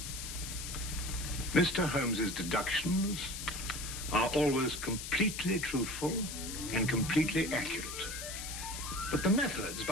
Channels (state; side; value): noise; left; hiss, 7 dB below the sound